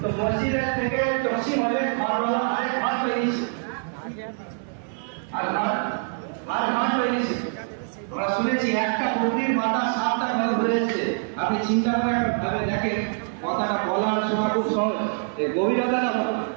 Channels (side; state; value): left; silent; digital silence